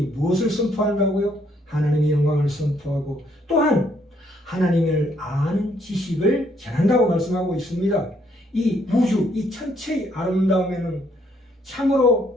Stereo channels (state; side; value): normal; both; correlation 0.69